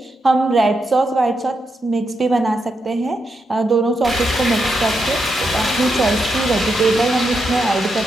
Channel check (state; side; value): normal; both; correlation 0.84